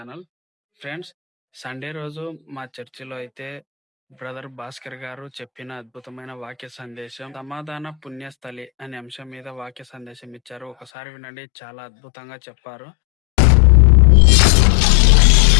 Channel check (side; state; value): right; drops out; at 10.9 s